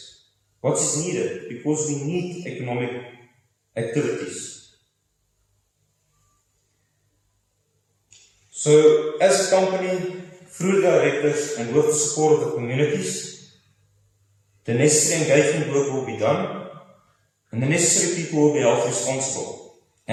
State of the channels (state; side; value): identical; both; correlation 1.00